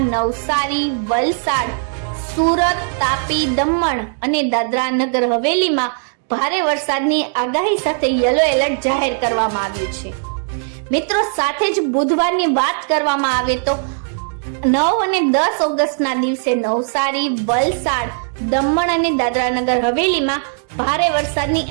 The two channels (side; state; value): left; silent; digital silence